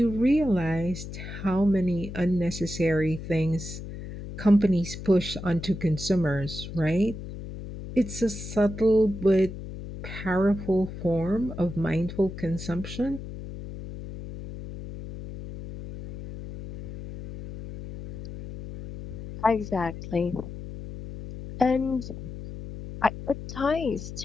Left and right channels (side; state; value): left; noise; hum, 10 dB below the sound